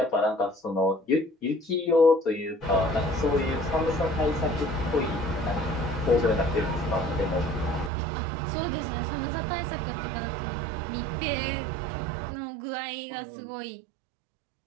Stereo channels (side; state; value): left; drops out; at 7.9 s